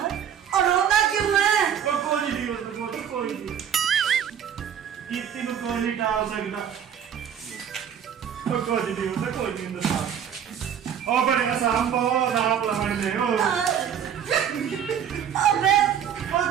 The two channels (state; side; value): quieter; left; 8.8 dB